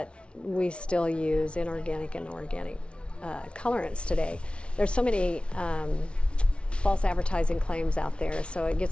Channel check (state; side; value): late; right; 0.059 ms